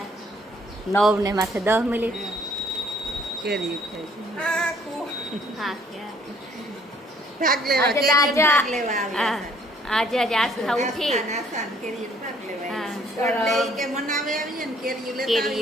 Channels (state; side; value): normal; both; correlation 0.61